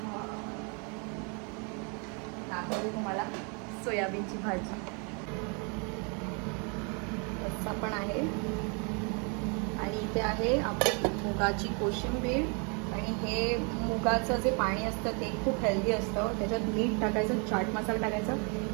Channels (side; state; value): left; quieter; 35.5 dB